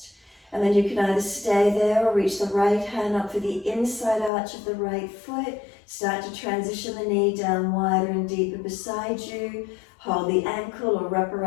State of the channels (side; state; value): right; drops out; at 4.3 s